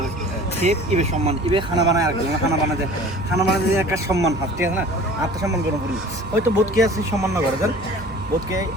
ইবে সম্মান ইবে খানা বানায় আর খানা বানাতে একটা সম্মান হাত ঠিক আছে না আত্মসম্মান গরম করি হয়তো বোধকে আছে সম্মান না করে দেন বোধকে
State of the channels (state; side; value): normal; both; correlation 0.44